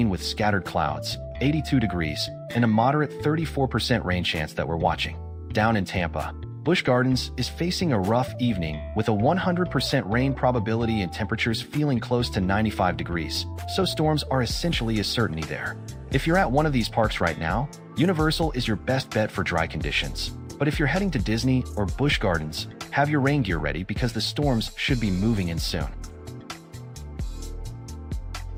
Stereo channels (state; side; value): identical; both; correlation 1.00